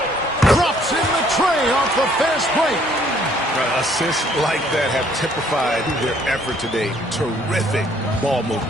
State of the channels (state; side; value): normal; both; correlation 0.62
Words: Drops in the tray off the fast break. Assists like that have typified their effort today. Terrific ball